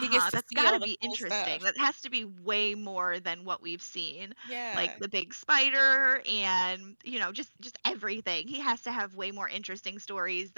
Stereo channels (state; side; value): inverted; both; correlation -1.00